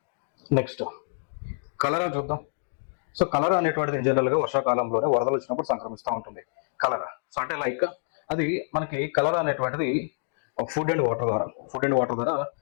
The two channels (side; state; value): right; silent; digital silence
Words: నెక్స్ట్ కలరా చూద్దాం. సో కలరా అనేటువంటిది జనరల్గా వర్షాకాలంలోనే వరదలు వచ్చినప్పుడు సంక్రమిస్తూ ఉంటుంది కలరా. సో అంటే లైక్ అది మనకి కలరా అనేటువంటిది ఫుడ్ అండ్ వాటర్ ద్వారా